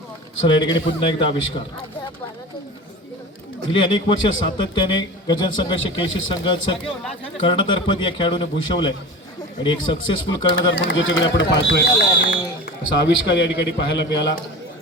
चला, या ठिकाणी पुन्हा एकदा आविष्कार. गेली अनेक वर्ष सातत्याने गजन संघाचे केशी संघाचं कर्णधारपद या खेळाडूने भूषवलंय आणि एक सक्सेसफुल कर्णधार म्हणून ज्याच्याकडे आपण पाहतोय असा आविष्कार या ठिकाणी पाहायला मिळाला.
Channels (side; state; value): both; normal; correlation 0.32